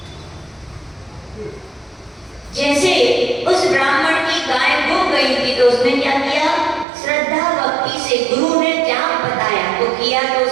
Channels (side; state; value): left; drops out; at 6.9 s